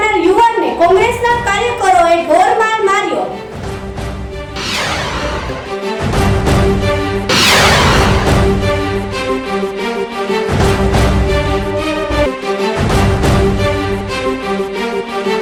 યુવાનને કોંગ્રેસના કાર્યકરોએ ઢોરમાર માર્યો।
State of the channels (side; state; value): both; identical; correlation 1.00